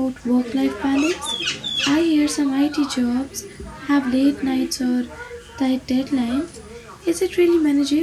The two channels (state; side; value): identical; both; correlation 1.00